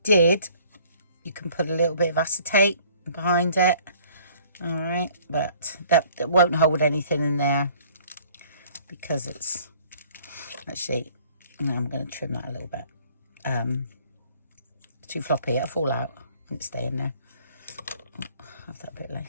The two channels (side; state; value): both; inverted; correlation -0.55